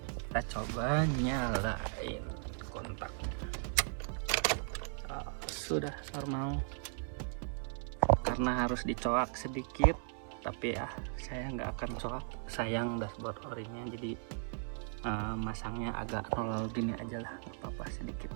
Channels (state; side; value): silent; left; 53 dB below the other